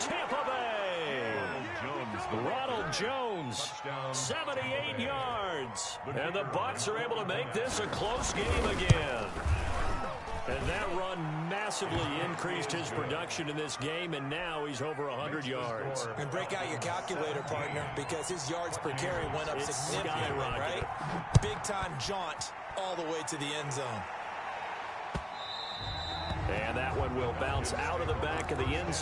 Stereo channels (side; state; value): both; identical; correlation 1.00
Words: Tampa Bay! Ronald Jones, 78 yards. And the Bucs are able to make this a close game again. And that run massively increased his production in this game, and now he's over 100 yards. And break out your calculator, partner, because his yards per carry went up significantly, right? Big-time jaunt all the way to the end zone. And that one will bounce out of the back of the end